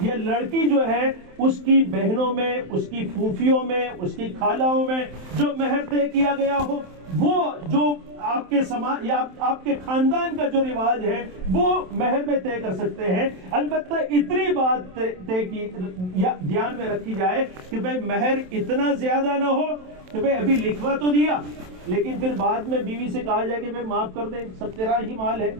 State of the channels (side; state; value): left; late; 27 ms